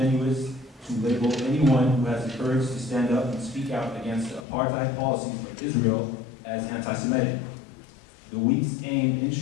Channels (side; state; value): right; drops out; at 4.5 s